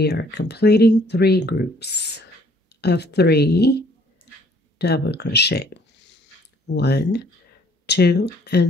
are completing 3 groups of 3 double crochet. 1, 2,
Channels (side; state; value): both; normal; correlation 0.60